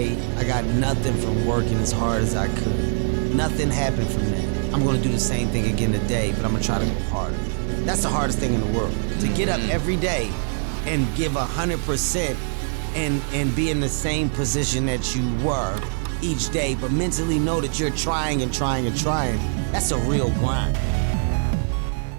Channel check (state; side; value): silent; left; digital silence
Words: I got nothing from working as hard as I could. Nothing happened from that. I'm gonna do the same thing again today, but I'm gonna try to go harder. That's the hardest thing in the world. To get up every day and give 100% and be in the same position that you were each day, but mentally know that you're trying and trying and trying. That's a real grind.